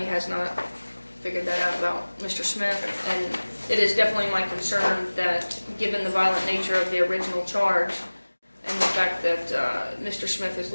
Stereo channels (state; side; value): inverted; both; correlation -1.00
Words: has not figured that out about Mr. Smith, and it is definitely my concern that given the violent nature of the original charge and the fact that Mr. Smith is